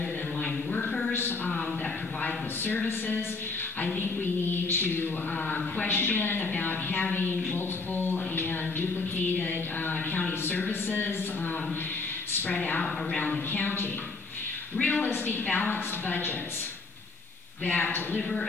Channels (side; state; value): right; quieter; 3.8 dB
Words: than line workers that provide the services. I think we need to question about having multiple and duplicated county services spread out around the county. Realistic, balanced budgets that deliver